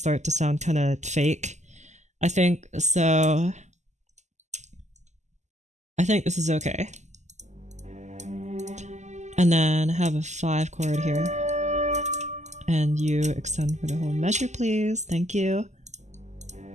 to sound kind of fake, I think. So I think this is okay. And then have a 5 chord here. And you extend for the whole measure, please. Thank you.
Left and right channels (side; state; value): left; late; 0.34 ms